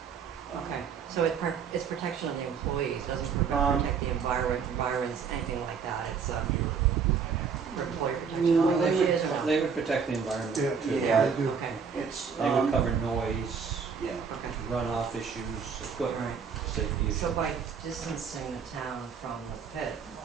okay, so it's protection of the employees, doesn't Um, protect the environments, anything like that, it's for employee Well, protection? they would protect the environment Yeah, too. Yeah. I do. Okay, It's, They would cover noise, yeah. okay, runoff issues, equipment right. safety issues. So by distancing the town from the pit,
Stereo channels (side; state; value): left; quieter; 6.3 dB